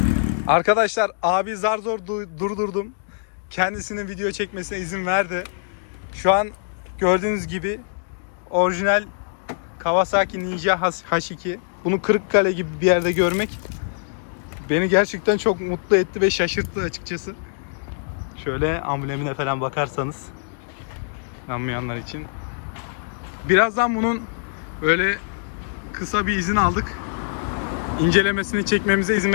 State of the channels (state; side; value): silent; right; digital silence